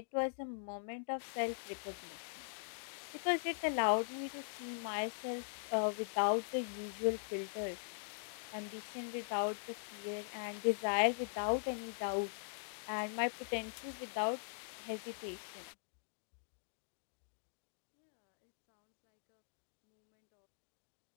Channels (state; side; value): silent; right; digital silence